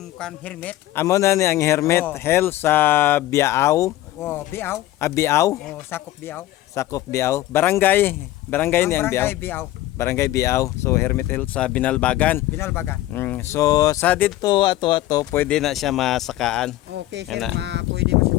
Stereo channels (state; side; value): quieter; right; 15.2 dB